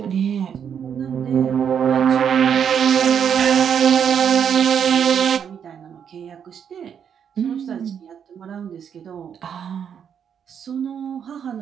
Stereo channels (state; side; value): quieter; left; 7.9 dB